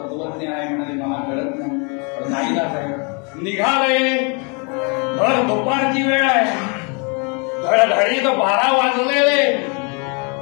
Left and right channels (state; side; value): quieter; right; 34.4 dB